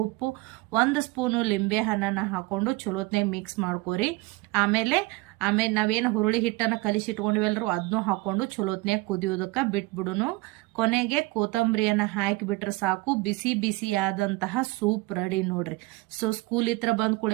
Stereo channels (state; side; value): quieter; left; 22.3 dB